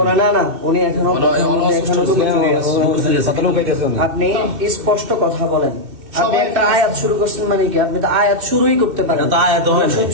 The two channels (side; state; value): left; late; 2.6 ms